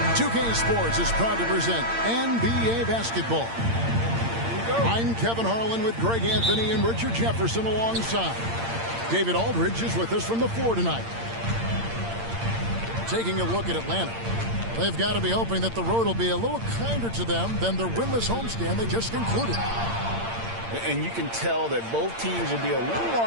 2K Sports is proud to present NBA basketball. I'm Kevin Harlan with Greg Anthony and Richard Jefferson alongside. David Aldridge is with us from the floor tonight. Taking a look at Atlanta. They've got to be hoping that the road will be a little kinder to them than their winless homestand they just concluded. And you can tell that both teams will be a little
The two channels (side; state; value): left; late; 8.7 ms